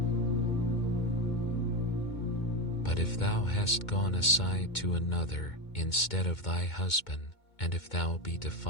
But if thou hast gone aside to another instead of thy husband, and if thou be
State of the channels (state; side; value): late; right; 2.2 ms